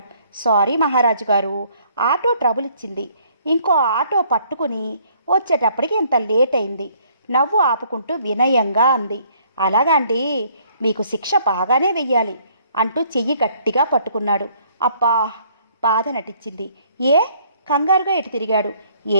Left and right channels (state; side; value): inverted; both; correlation -0.62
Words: సారీ మహారాజు గారు, ఆటో ట్రబుల్ ఇచ్చింది. ఇంకో ఆటో పట్టుకుని వచ్చేటప్పటికి ఇంత లేట్ అయింది. నవ్వు ఆపుకుంటూ వినయంగా అంది. అలాగండి, మీకు శిక్ష బాగానే వెయ్యాలి అంటూ చెయ్యి గట్టిగా పట్టుకున్నాడు. అబ్బా, బాధ నటించింది. ఏ కంగారుగా ఎటు తిరిగాడు.